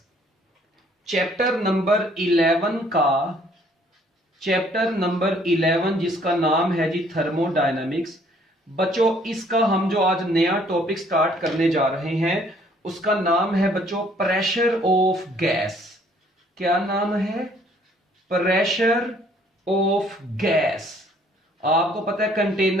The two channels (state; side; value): normal; both; correlation 0.61